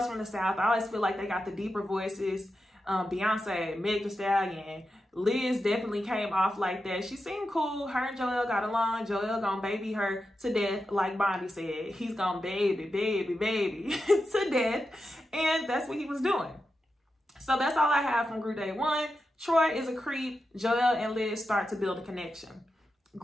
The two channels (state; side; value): normal; both; correlation 0.89